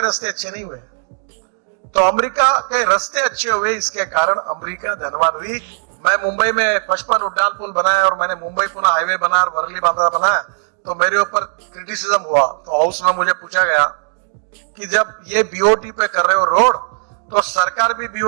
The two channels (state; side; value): silent; left; digital silence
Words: रास्ते अच्छे नहीं हुए। तो अमेरिका के रास्ते अच्छे हुए, इसके कारण अमेरिका धनवान हुई। मैं मुंबई में 55 उड्डान पुल बनाया और मैंने मुंबई पुणे हाईवे बनाया और वर्ली बांद्रा बनाया, तो मेरे ऊपर क्रिटिसिज्म हुआ। तो हाउस में मुझे पूछा गया कि जब ये बीओटी पे कर रहे हो रोड, तो सरकार भी